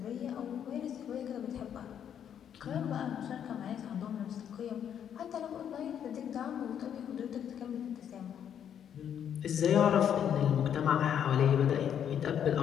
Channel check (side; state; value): right; quieter; 9.0 dB